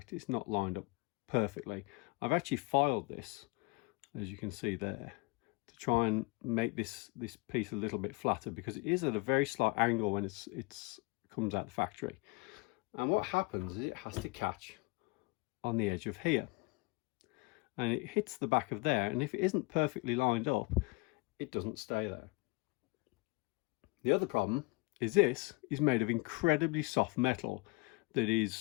it's not lined up perfectly. I've actually filed this, as you can see there, to try and make this piece a little bit flatter, because it is at a very slight angle when it's comes out the factory. And what happens is it has to catch on the edge of here, and it hits the back of there, and if it isn't perfectly lined up, it doesn't stay there. The other problem is this is made of incredibly soft metal that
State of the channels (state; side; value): quieter; right; 27.2 dB